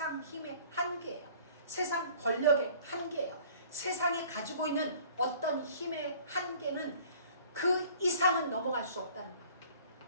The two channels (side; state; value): both; inverted; correlation -0.51